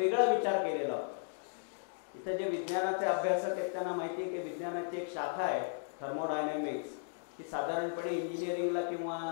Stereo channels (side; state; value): right; silent; digital silence